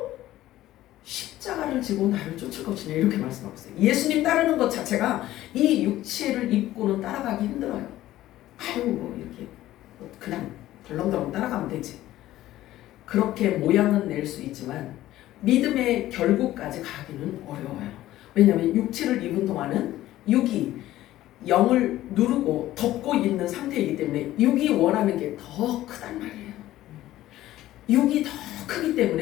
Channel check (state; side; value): quieter; right; 14.8 dB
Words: 십자가를 지고 나를 쫓을 것이냐, 이렇게 말씀하고 있어요. 예수님 따르는 것 자체가 이 육체를 입고는 따라가기 힘들어요. 이렇게 그냥 덜렁덜렁 따라가면 되지. 그렇게 모양은 낼 수 있지만 믿음의 결국까지 가기는 어려워요. 왜냐하면 육체를 입은 동안은 육이 영을 누르고 덮고 있는 상태이기 때문에 육이 원하는 게 더 크단 말이에요. 육이 더 크기